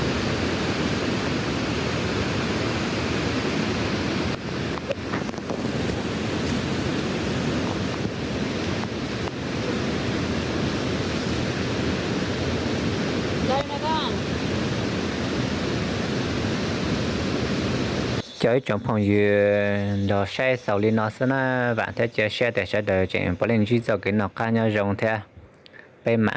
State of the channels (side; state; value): both; identical; correlation 1.00